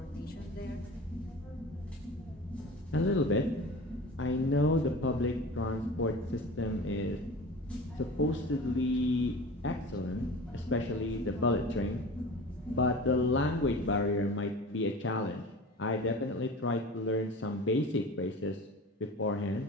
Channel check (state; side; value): normal; both; correlation 0.36